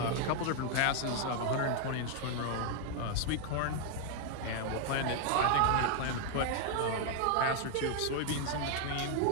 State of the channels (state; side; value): different; both; correlation 0.00